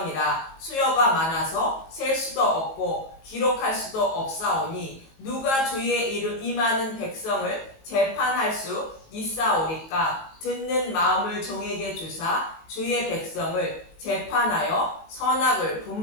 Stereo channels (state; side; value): late; right; 19 ms